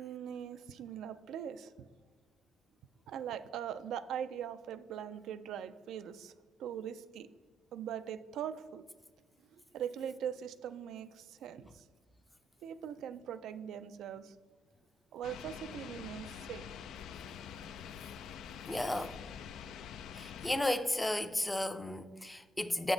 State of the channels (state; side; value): normal; both; correlation 0.78